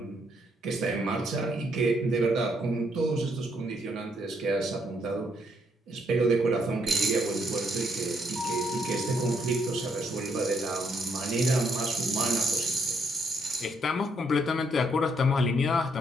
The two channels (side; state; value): both; normal; correlation 0.72